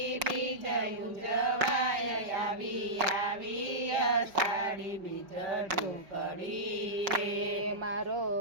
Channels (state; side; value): late; left; 5.5 ms